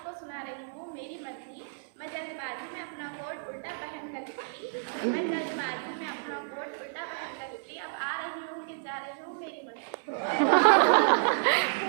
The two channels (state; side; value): silent; left; 57 dB below the other